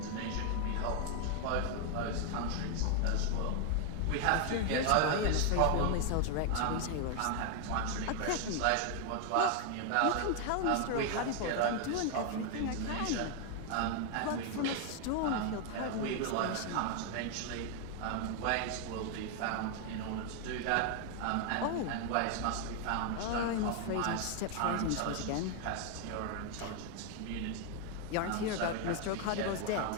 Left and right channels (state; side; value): different; both; correlation 0.00